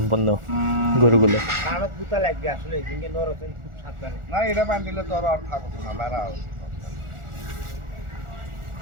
গরুগুলো। না এটা বান দিলে তো আর থাকতো না লারা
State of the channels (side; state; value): left; late; 1.4 ms